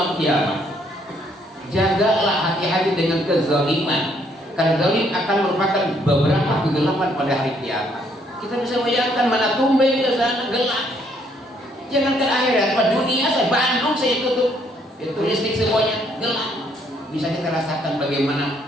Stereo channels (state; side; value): normal; both; correlation 0.68